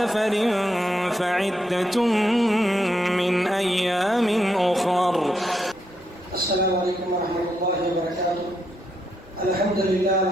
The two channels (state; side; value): noise; right; rumble, 28 dB below the sound